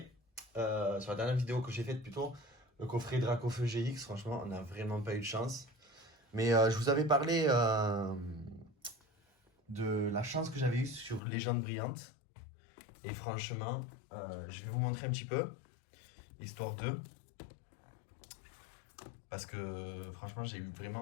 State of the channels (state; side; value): drops out; right; at 11.2 s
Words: sur la dernière vidéo que j'ai faite plutôt, le coffret Dracofeu GX, franchement, on n'a vraiment pas eu de chance. Mais je vous avais parlé de la chance que j'avais eue sur Légende Brillante. Et franchement, je vais vous montrer un petit peu, histoire de. Parce que franchement, j'ai eu